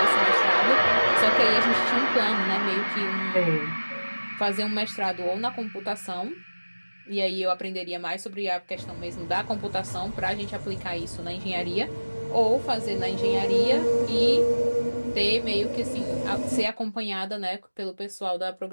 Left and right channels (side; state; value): both; inverted; correlation -1.00